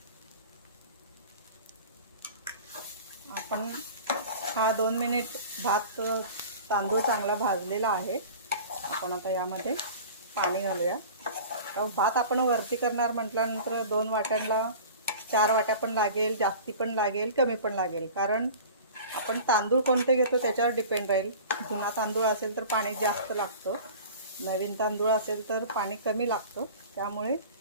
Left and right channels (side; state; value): both; inverted; correlation -0.39